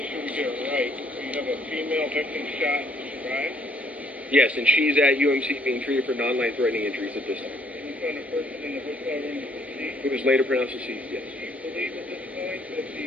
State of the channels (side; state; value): both; normal; correlation 0.64